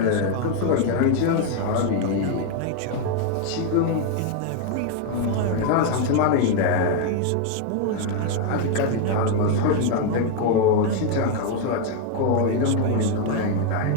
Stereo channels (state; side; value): different; both; correlation 0.01